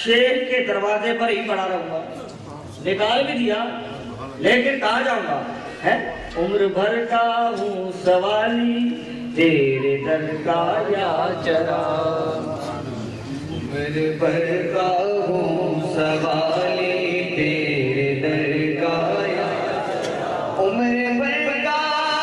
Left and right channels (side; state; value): both; identical; correlation 1.00